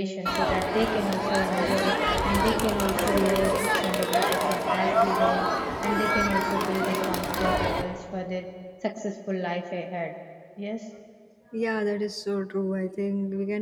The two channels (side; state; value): both; identical; correlation 1.00